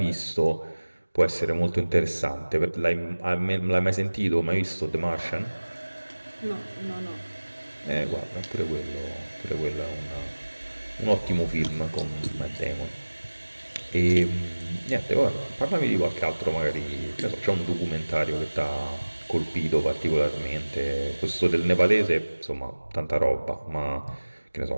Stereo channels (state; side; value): inverted; both; correlation -1.00